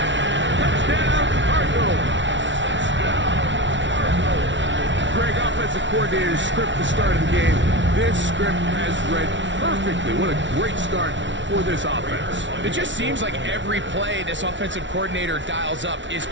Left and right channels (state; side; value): late; left; 0.55 ms